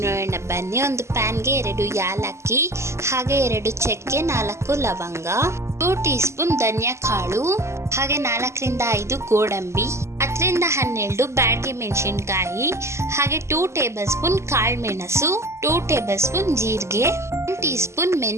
ನೋಡೋಣ ಬನ್ನಿ. ಒಂದು ಪ್ಯಾನ್ಗೆ 2 ಯಾಲಕ್ಕಿ, ಹಾಗೆ 2 ಚಕ್ಕೆ, 4 ಲವಂಗ, 2 ಟೀ ಸ್ಪೂನ್ ಧನಿಯಾ ಕಾಳು, ಹಾಗೆ 4ರಿಂದ 5 ಗೋಡಂಬಿ, 10ರಿಂದ 12 ಬ್ಯಾಡಗಿ ಮೆಣಸಿನ್ಕಾಯಿ, ಹಾಗೆ 2 ಟೇಬಲ್ ಸ್ಪೂನ್ ಕಾಳು ಮೆಣಸು, 2 ಟೇಬಲ್ ಸ್ಪೂನ್ ಜೀರಿಗೆ, 1 ಟೀ ಸ್ಪೂನ್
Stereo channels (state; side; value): late; left; 0.13 ms